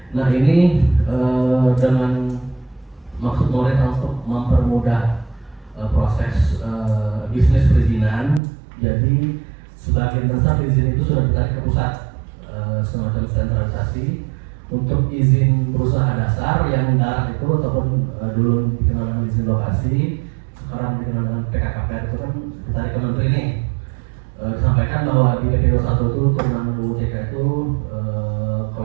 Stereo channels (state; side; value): drops out; left; at 8.4 s